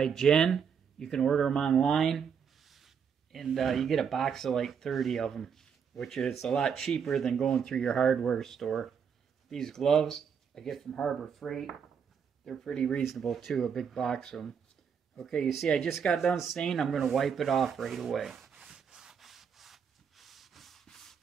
Jen. You can order them online. And you get a box of like 30 of them, which is a lot cheaper than going through your hardware store. These gloves I get from Harbor Freight. They're pretty reasonable too, a big box of them. Okay, you see I just got done staining. I'm going to wipe it off right away.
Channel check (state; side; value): quieter; left; 7.0 dB